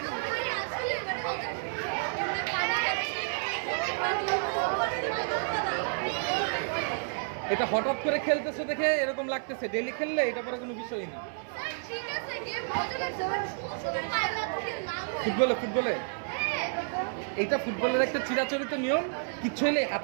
এটা হঠাৎ করে খেলতেছে দেখে এরকম লাগতেছে, ডেইলি খেললে এটা পরে কোনো বিষয়ই না। ফুটবলে, ফুটবলে এইটা ফুটবলের একটা চিরাচরিত নিয়ম, কিচ্ছু হলে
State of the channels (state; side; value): silent; left; 57 dB below the other